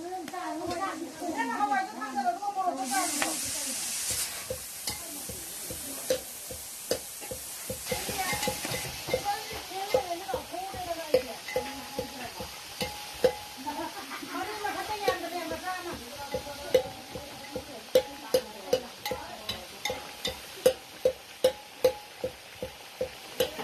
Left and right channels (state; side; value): identical; both; correlation 1.00